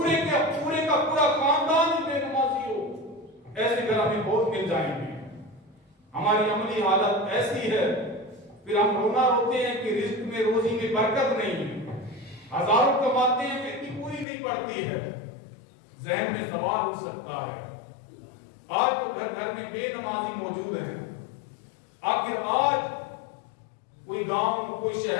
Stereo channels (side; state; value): right; drops out; at 14.2 s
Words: کا پورا خاندان ہی بے نمازی ہو ایسے گھر ہمیں بہت مل جائیں گے۔ ہماری عملی حالت ایسی ہے، پھر ہم رونا روتے ہیں کہ رزق میں روزی میں برکت نہیں ہے، ہزاروں کماتے ہیں پھر بھی پوری نہیں پڑتی ہے۔ ذہن میں سوال ہو سکتا ہے، آج تو گھر گھر میں بے نمازی موجود ہیں، آخر آج کوئی گاؤں کوئی